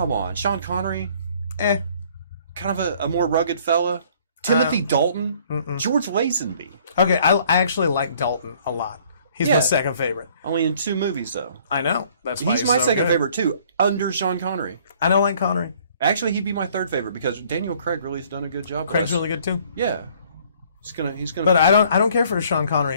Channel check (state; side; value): inverted; both; correlation -0.58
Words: on. Sean Connery, Eh. kind of a more rugged fella. Timothy Dalton, George Lazenby. Okay, I actually like Dalton a lot. He's my Yeah. second favorite. Only in 2 movies, though. I know. That's why He's my so second good. favorite, too, under Sean Connery. I don't like Connery. Actually, he'd be my 3rd favorite because Daniel Craig really has done a good job. Craig's really good too. Yeah. He's gonna. But I don't care for Sean